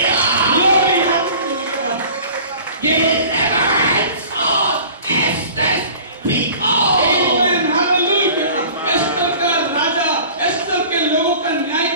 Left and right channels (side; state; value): both; inverted; correlation -0.44